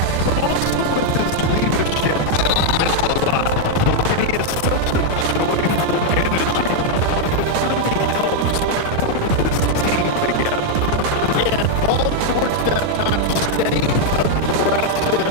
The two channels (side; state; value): both; different; correlation 0.00